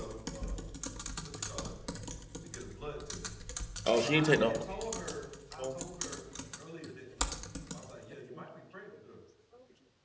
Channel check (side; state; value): both; identical; correlation 1.00